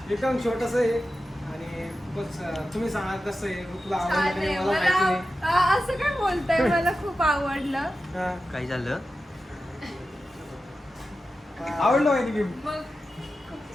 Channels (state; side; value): normal; both; correlation 0.92